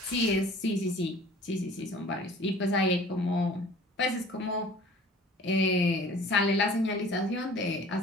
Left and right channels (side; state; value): both; normal; correlation 0.48